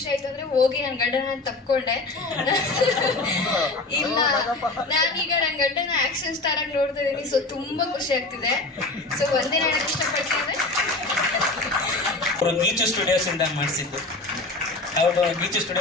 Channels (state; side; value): quieter; right; 3.1 dB